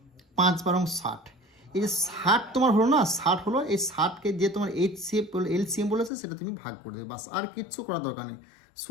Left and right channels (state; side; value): drops out; right; at 6.1 s